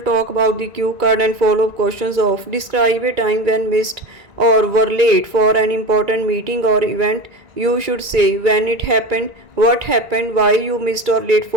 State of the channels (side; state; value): left; late; 2.3 ms